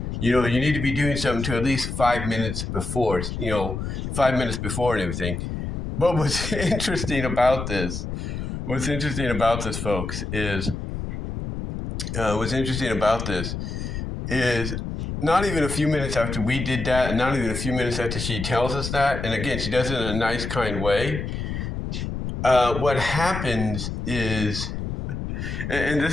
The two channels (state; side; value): noise; left; rumble, 5 dB below the sound